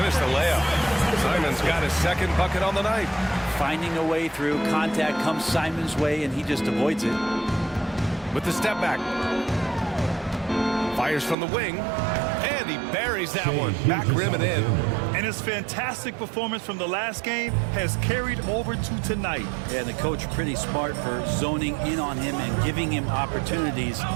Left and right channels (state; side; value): drops out; left; at 11.4 s